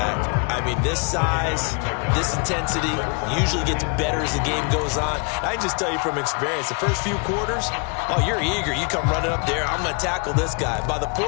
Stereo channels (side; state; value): right; quieter; 35.3 dB